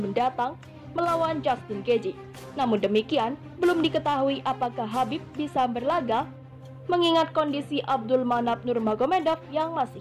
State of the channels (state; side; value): identical; both; correlation 1.00